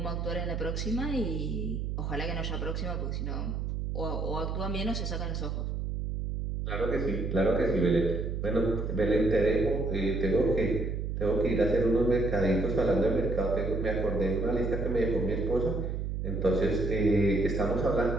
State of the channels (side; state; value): right; noise; hum, 2 dB below the sound